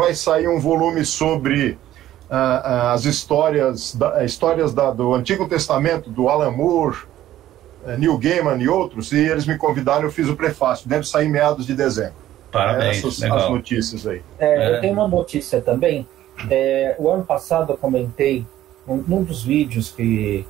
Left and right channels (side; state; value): left; quieter; 13.3 dB